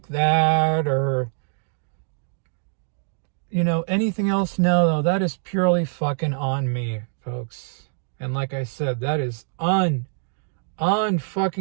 that, or, you know, anything else. No, that is purely fucking on me, folks. And like I said, that is unfucking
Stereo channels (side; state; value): left; silent; digital silence